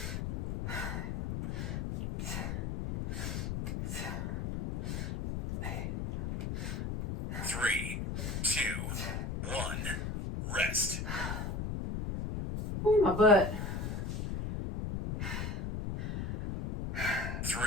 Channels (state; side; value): noise; left; rumble, 3 dB below the sound